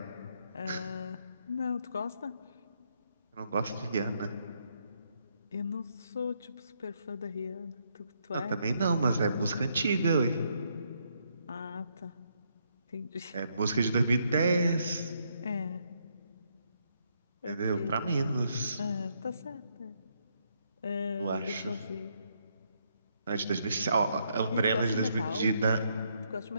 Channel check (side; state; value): both; inverted; correlation -0.75